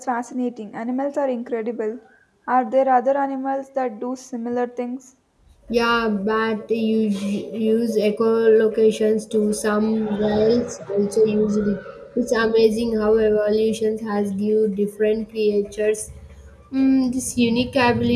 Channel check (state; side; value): identical; both; correlation 1.00